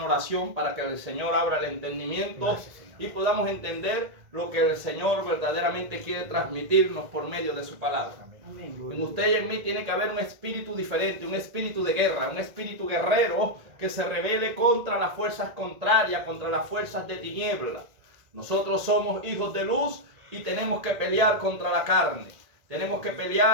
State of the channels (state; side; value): late; left; 1.8 ms